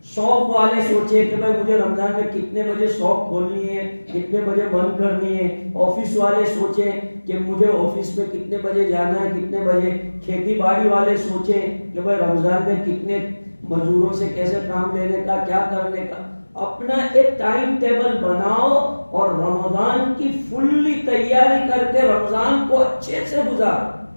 شاپ والے سوچے کہ بھائی مجھے رمضان میں کتنے بجے شاپ کھولنی ہے، کتنے بجے بند کرنی ہے. آفس والے سوچیں کہ مجھے آفس میں کتنے بجے جانا ہے، کتنے بجے. کھیتی باڑی والے سوچیں کہ بھائی رمضان میں کتنے مزدوروں سے کیسے کام لینے کا، کیا کرنے کا. اپنا ایک ٹائم ٹیبل بناؤ اور رمضان کی فلی تیاری کر کے رمضان کو اچھے سے گزارو.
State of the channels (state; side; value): inverted; both; correlation -1.00